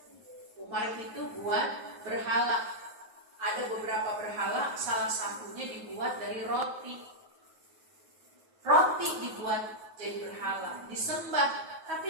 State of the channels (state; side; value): late; left; 9.4 ms